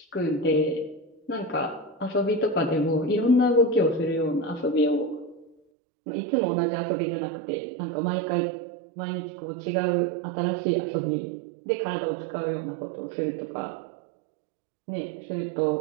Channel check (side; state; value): left; drops out; at 5.6 s